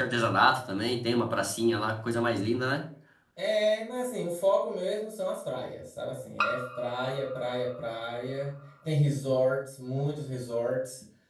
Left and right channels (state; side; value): identical; both; correlation 1.00